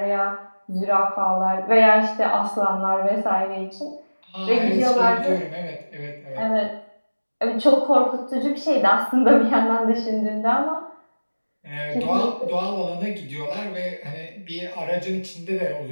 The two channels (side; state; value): both; inverted; correlation -1.00